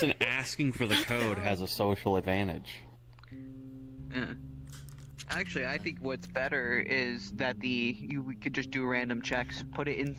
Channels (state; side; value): identical; both; correlation 1.00